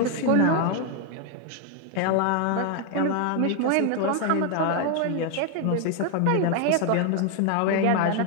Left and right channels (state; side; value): different; both; correlation 0.00